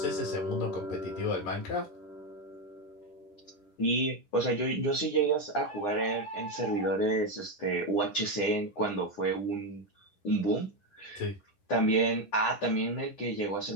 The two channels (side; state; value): right; late; 9.9 ms